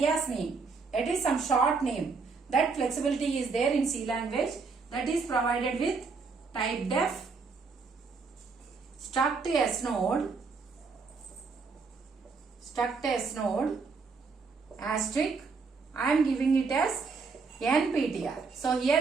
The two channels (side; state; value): left; quieter; 4.7 dB